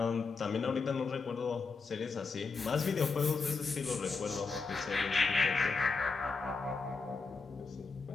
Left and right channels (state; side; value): quieter; right; 4.4 dB